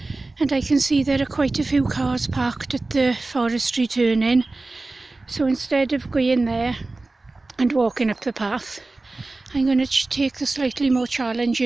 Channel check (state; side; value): quieter; left; 3.2 dB